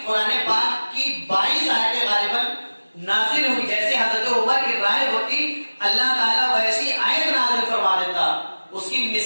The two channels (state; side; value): inverted; both; correlation -1.00